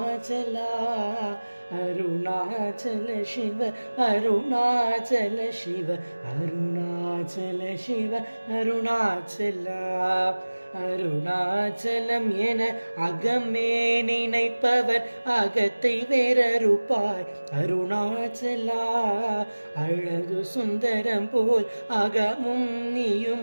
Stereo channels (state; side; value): inverted; both; correlation -1.00